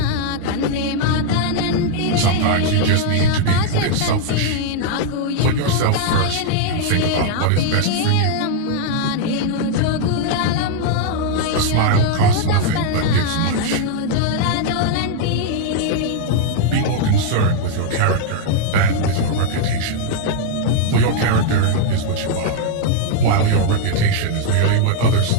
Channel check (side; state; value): both; different; correlation 0.00